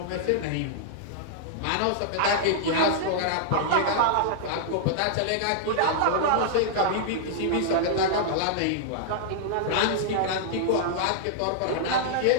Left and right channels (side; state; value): both; different; correlation -0.01